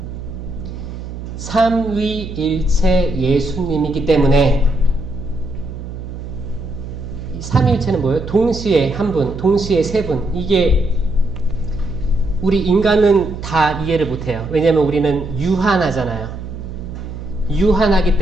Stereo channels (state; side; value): noise; right; hum, 9 dB below the sound